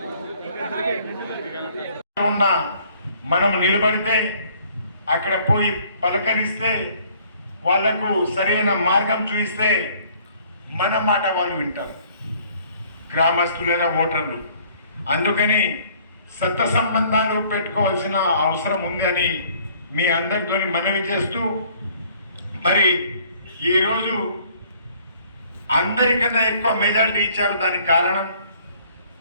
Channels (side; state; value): both; inverted; correlation -0.59